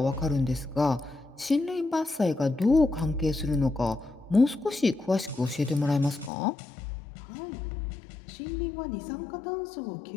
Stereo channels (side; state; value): right; drops out; at 6.3 s